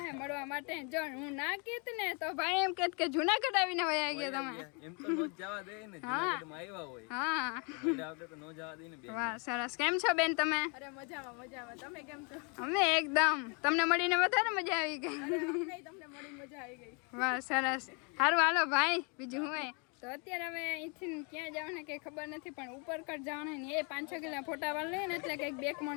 હે મળવા માટે. જો હું ના કહેત ને તો ભાઈ એમ કહેત કે જુનાગઢ આવીને વયા ગયા તમે. એમ તો નો જવા દે ને, જુનાગઢમાં આવ્યા હોય. હા મજા આવતે તો નો જવા દે ને બે. વાહ સરસ. કેમ છો બેન તમે? અરે મજામાં. તમે કેમ છો? અમે એકદમ. તમને મળીને વધારે મજા આવી ગઈ. તમને મળી મજા આવી ગઈ. વાહ સરસ. સારું હાલો ભાઈ, બીજું હું તો અત્યારે હવે અહીંથી ક્યાં જવાનું ને કંઈ ખબર નથી, પણ ઉપર કટ જવાનું ને એ 5-6 કિલો ફોટા વાળ લઈએ ને એટલે કંઈક 2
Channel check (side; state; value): right; quieter; 34.7 dB